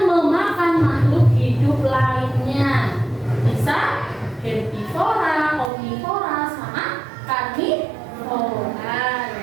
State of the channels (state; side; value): drops out; left; at 5.7 s